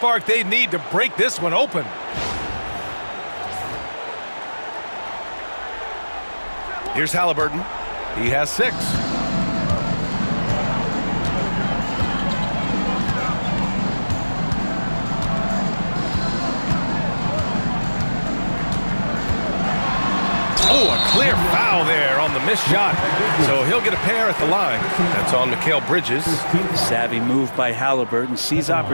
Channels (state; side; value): inverted; both; correlation -1.00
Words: they need to break this one open. Here's Haliburton. He has 6. Oh, a clear foul there on the missed shot. So he'll get a pair at the line. That's on Mikal Bridges. Savvy move by Haliburton. Sees